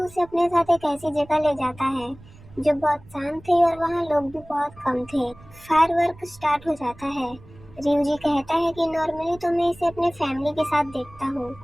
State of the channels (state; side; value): noise; right; rumble, 22 dB below the sound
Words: अपने साथ एक ऐसी जगह ले जाता है जो बहुत शांत थी और वहाँ लोग भी बहुत कम थे। फायरवर्क स्टार्ट हो जाता है। रियूजी कहता है कि नॉर्मली तो मैं इसे अपने फैमिली के साथ देखता हूँ,